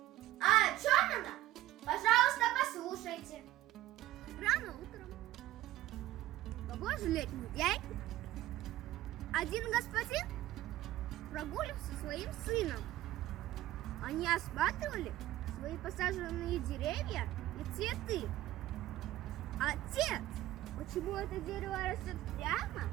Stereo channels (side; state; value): left; quieter; 15.0 dB